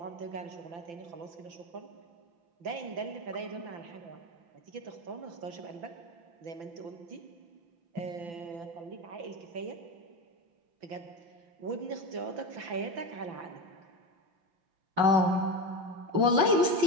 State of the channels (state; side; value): late; left; 5.9 ms